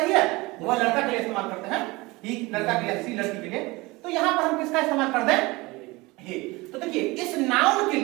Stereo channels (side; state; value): left; quieter; 22.7 dB